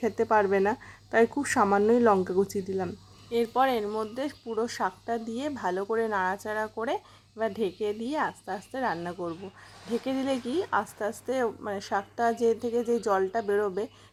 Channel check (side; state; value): both; identical; correlation 1.00